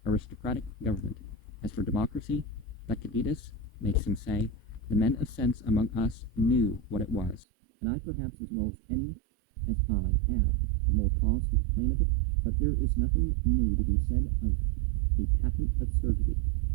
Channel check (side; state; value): left; drops out; at 7.5 s